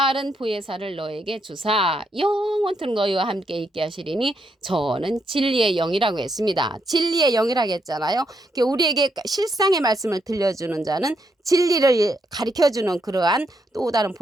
보혜사를 너에게 주사 영원토록 너희와 함께 있게 하시리니 저는 진리의 영이라고 했습니다. 진리의 영이라고 했잖아요. 우리에게 실상의 말씀을 들려주는 자는 진리를 가르쳐주는 그러한 또 다른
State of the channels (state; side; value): normal; both; correlation 0.79